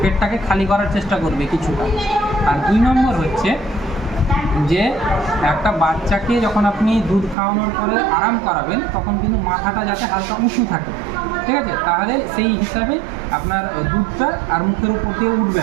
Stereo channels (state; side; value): drops out; left; at 7.4 s